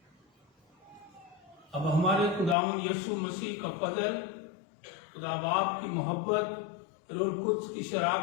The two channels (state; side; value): drops out; right; at 2.6 s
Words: अब हमारे खुदावंद यीशु मसीह का फजल, खुदा बाप की मोहब्बत, रूह कुद्स की